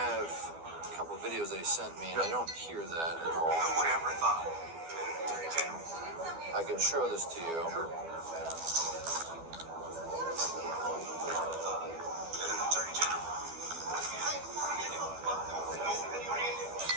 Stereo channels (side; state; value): left; late; 12 ms